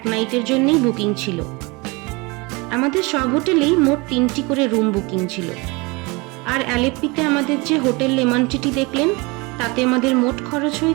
নাইটের জন্যই বুকিং ছিল। আমাদের সব হোটেলেই মোট 3টি করে রুম বুকিং ছিল। আর অ্যালেপ্পিতে আমাদের যে হোটেল লেমনটিটি দেখলেন তাতে আমাদের মোট খরচ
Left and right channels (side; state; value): left; quieter; 26.5 dB